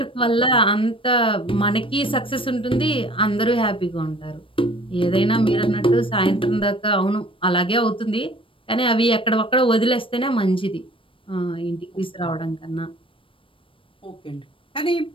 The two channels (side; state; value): right; late; 0.25 ms